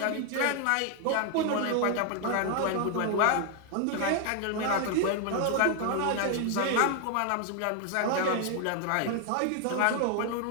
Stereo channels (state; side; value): different; both; correlation 0.00